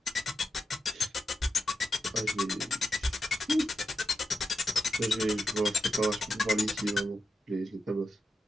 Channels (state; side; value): normal; both; correlation 0.87